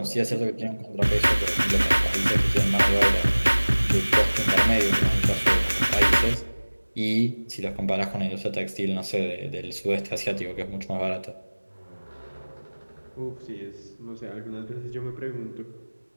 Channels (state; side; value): inverted; both; correlation -1.00